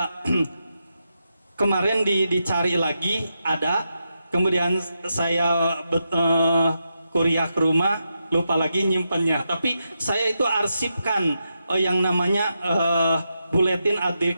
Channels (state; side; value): inverted; both; correlation -0.85